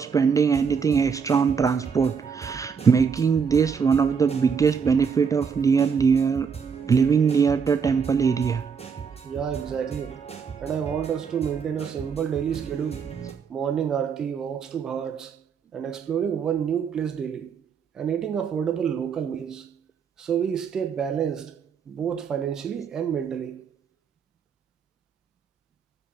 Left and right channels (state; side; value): quieter; left; 6.3 dB